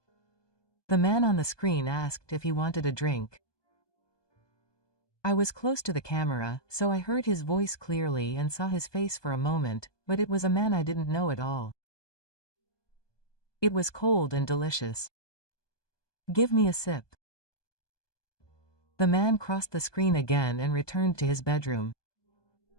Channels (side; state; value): right; late; 1.2 ms